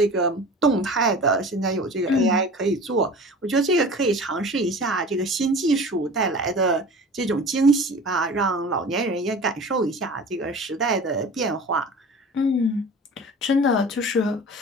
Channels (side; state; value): both; normal; correlation 0.39